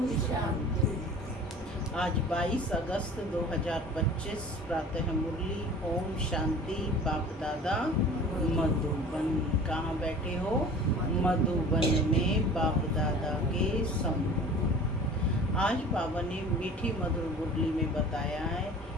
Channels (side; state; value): both; normal; correlation 0.43